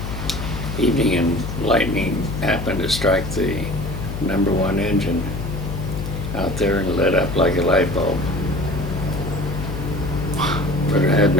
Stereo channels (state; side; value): noise; left; hum, 5 dB below the sound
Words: evening, and lightning happened to strike the number 1 engine out there and lit up like a light bulb. But it had